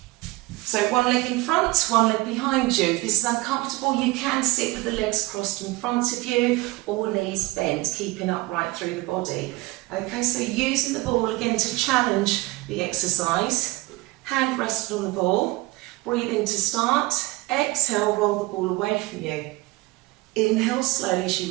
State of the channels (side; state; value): left; quieter; 21.1 dB